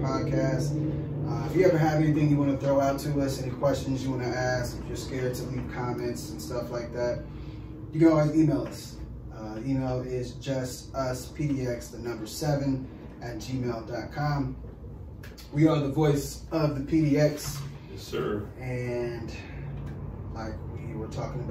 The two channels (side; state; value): both; identical; correlation 1.00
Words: If you ever have anything you want to throw out to us, any questions you want to ask, if you're scared to leave comments and stuff like that, you can always email us. Email is justuspdx7@gmail.com. We are the voice of the PDX. Yes, sir. And like we were talking